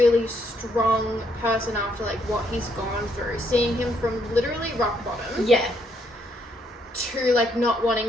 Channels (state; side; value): normal; both; correlation 0.72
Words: strong person after like what he's gone through, seeing him from literally rock bottom to like not